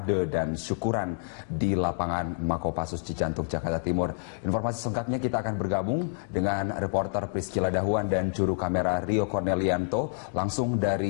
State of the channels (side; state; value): right; silent; digital silence